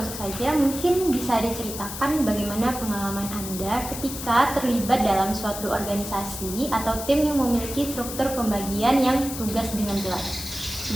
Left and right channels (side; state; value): left; noise; hiss, 8 dB below the sound